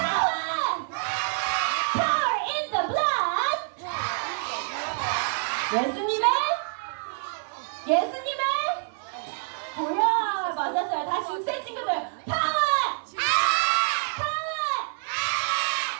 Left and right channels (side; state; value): left; silent; 56 dB below the other